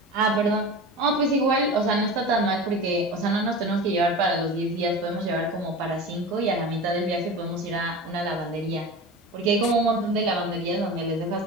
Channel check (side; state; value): both; normal; correlation 0.31